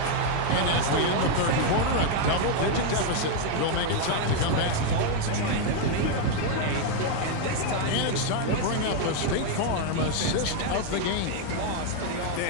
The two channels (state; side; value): different; both; correlation 0.00